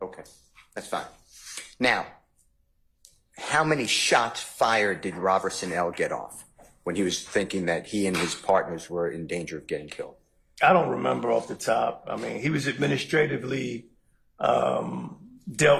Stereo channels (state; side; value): identical; both; correlation 1.00